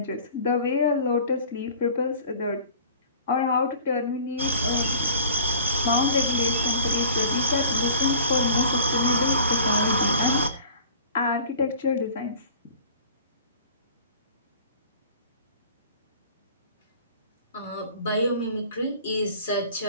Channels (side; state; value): both; inverted; correlation -0.45